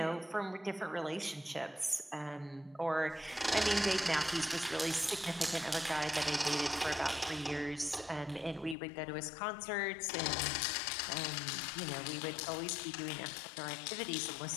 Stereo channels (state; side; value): drops out; right; at 8.8 s